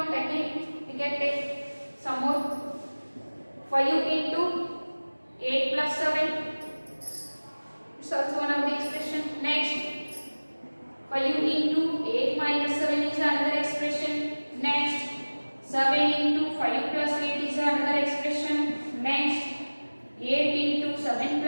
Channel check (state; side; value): inverted; both; correlation -1.00